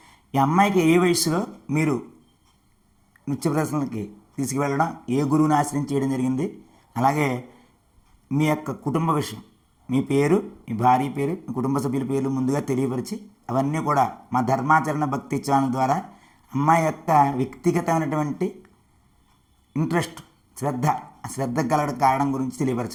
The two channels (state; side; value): identical; both; correlation 1.00